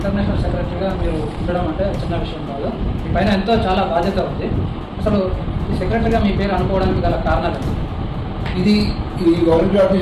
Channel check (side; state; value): both; identical; correlation 1.00